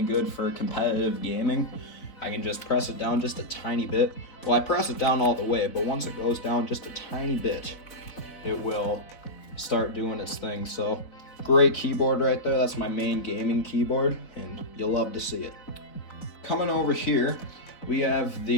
good for competitive gaming. I can just press it down just a tiny bit. Well, I press it down all the way, but once it goes down just a tiny bit, it will start doing its thing. So great keyboard right there. That's my main gaming keyboard, and you'll love to see it. Coming over here, we have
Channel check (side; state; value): right; late; 4.0 ms